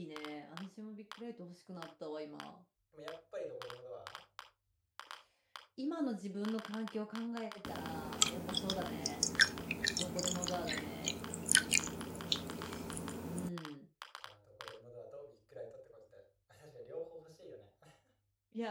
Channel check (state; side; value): identical; both; correlation 1.00